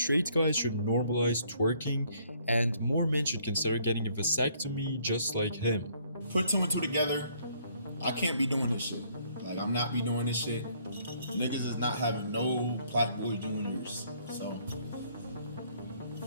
guys should normalize twerking and more men should consider getting a vasectomy just like him. Put two and two together. I can't be doing this shit. Like, I'm not be doing this shit. Niggas is not having no PlaqueBoy Juniors. So,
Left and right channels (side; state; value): both; inverted; correlation -0.64